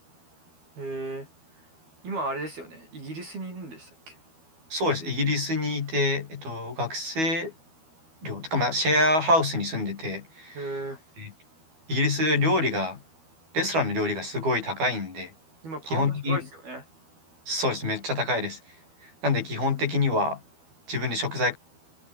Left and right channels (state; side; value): late; left; 12 ms